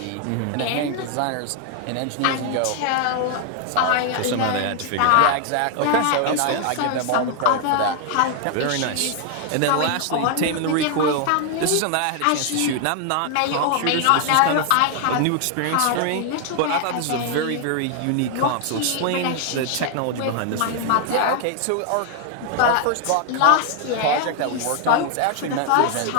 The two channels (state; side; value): different; both; correlation 0.00